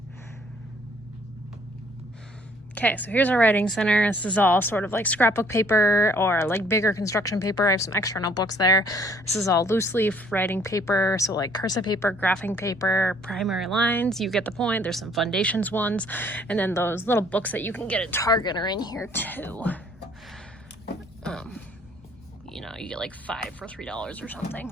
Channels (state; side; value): normal; both; correlation 0.61